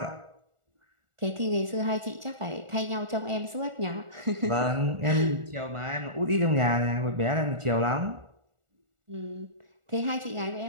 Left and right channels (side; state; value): left; late; 1.4 ms